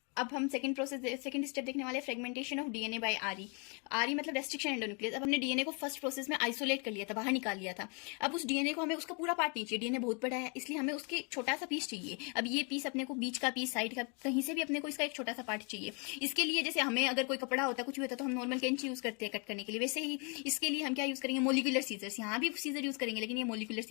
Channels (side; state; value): right; quieter; 34.5 dB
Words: अब हम सेकंड स्टेप देखने वाले फ्रेगमेंटेशन ऑफ डीएनए बाय आरई। आरई मतलब रेस्ट्रिक्शन एंडोन्यूक्लियस। अब हमने डीएनए को फर्स्ट प्रोसेस में आइसोलेट कर लिया था, बाहर निकाल लिया था। अब उस डीएनए को हमें उसका पूरा पार्ट नहीं चाहिए, डीएनए बहुत बड़ा है इसलिए हमें उसके छोटा सा पीस चाहिए। अब ये पीस अपने को बीच का पीस, साइड का, कहीं से भी अपने को इसका एक छोटा सा पार्ट चाहिए। इसके लिए जैसे हमें अगर कोई कपड़ा होता है, कुछ भी होता है, तो हम नॉर्मल कैंची यूज करते हैं कट करने के लिए, वैसे ही इसके लिए हम क्या यूज करेंगे, मोलिकुलर सीजर्स। यहाँ भी सीजर यूज करेंगे लेकिन ये मोलिकुलर